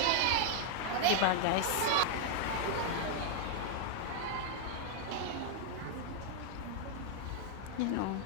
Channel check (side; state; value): both; different; correlation 0.00